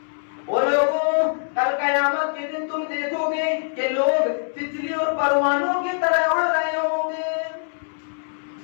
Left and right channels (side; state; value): right; silent; 63 dB below the other